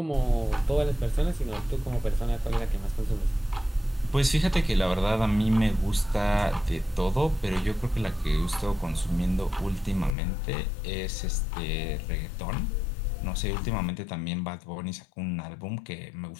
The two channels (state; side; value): drops out; right; at 10.1 s